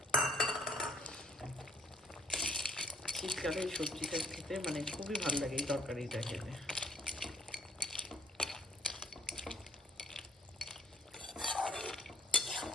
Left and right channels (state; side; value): normal; both; correlation 0.63